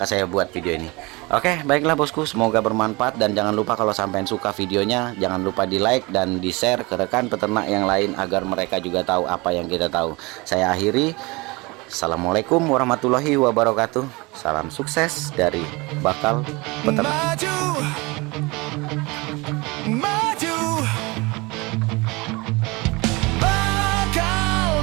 saya buat video ini. Oke, baiklah bosku, semoga bermanfaat, dan jangan lupa kalau sampean suka videonya, jangan lupa di like dan di share ke rekan peternak yang lain agar mereka juga tahu apa yang kita tahu. Saya akhiri, assalamualaikum warahmatullahi wabarakatuh. Salam sukses dari Bakal Peternak.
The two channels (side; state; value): left; quieter; 25.1 dB